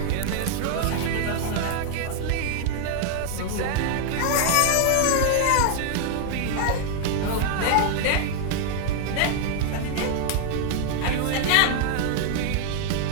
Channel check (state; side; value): different; both; correlation 0.00